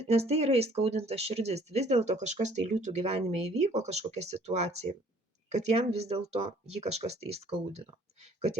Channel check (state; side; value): normal; both; correlation 0.58